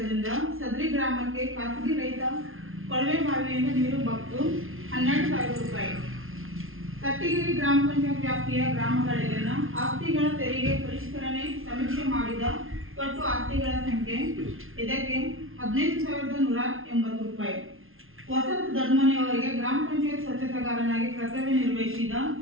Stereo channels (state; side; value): late; left; 0.61 ms